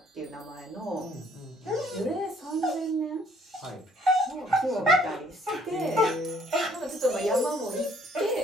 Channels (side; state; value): both; normal; correlation 0.62